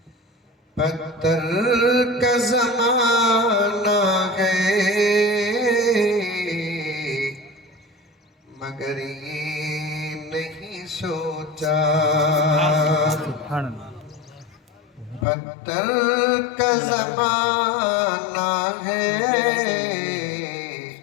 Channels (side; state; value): right; drops out; at 15.2 s